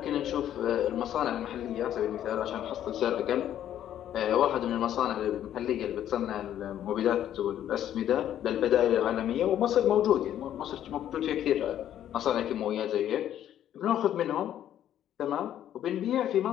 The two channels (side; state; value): right; quieter; 11.1 dB